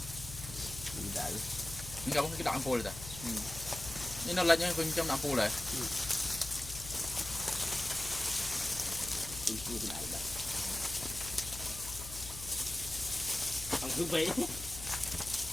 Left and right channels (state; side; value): noise; left; hum, 11 dB below the sound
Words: đại. Nhưng không cái đoạn phô này ta. Nhưng nó lên những phần trong đoạn phô này. Ông cứ vậy.